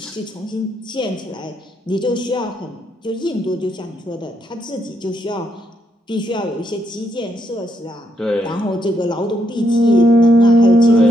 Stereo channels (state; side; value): normal; both; correlation 0.77